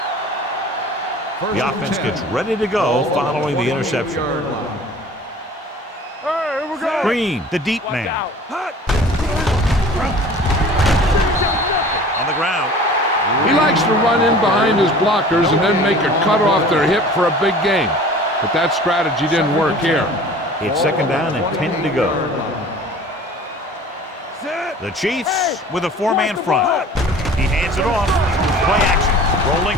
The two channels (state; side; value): normal; both; correlation 0.45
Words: The offense gets ready to go following the interception. Hey, here we go. Green, the deep man. On the ground. He likes to run in behind his blockers and then make a cut off their hip for a big gain. But that strategy didn't work here. It's second down and 10 to go. The Chiefs with a four-man front. He hands it off. Play action. Rolling